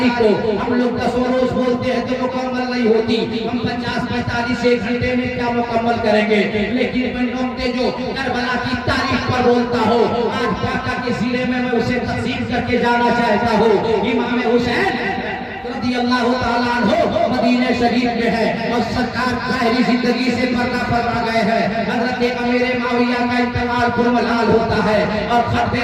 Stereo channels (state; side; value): identical; both; correlation 1.00